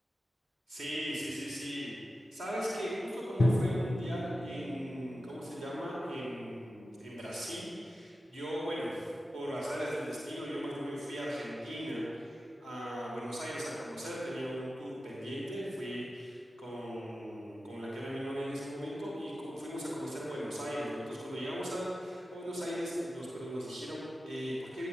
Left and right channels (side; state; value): both; normal; correlation 0.93